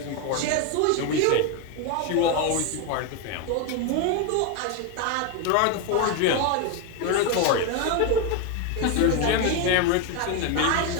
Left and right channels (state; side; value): different; both; correlation 0.02